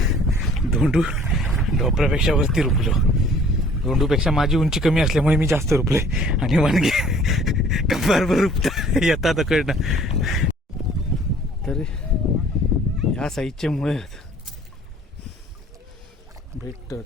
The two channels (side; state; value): both; normal; correlation 0.54